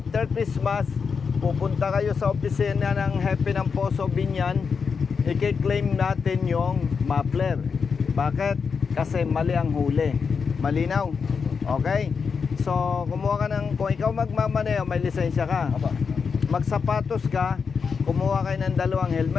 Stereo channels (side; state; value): right; quieter; 5.7 dB